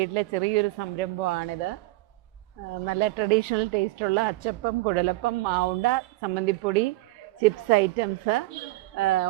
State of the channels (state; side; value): quieter; left; 19.5 dB